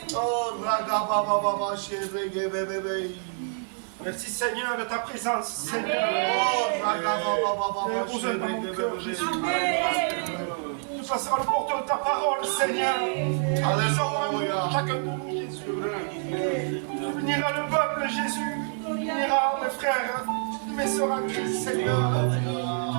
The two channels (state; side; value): silent; left; 60 dB below the other